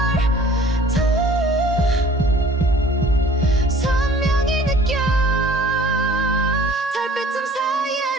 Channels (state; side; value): normal; both; correlation 0.50